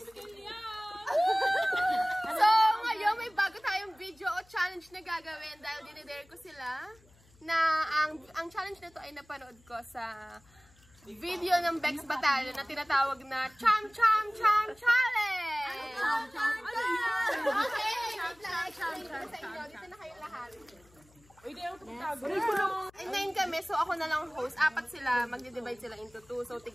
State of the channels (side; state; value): left; noise; hum, 29 dB below the sound